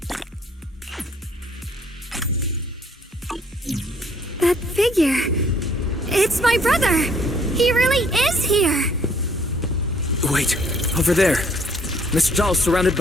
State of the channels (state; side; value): normal; both; correlation 0.62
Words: That figure. It's my brother. He really is here. Wait, over there. Miss Zhao's surrounded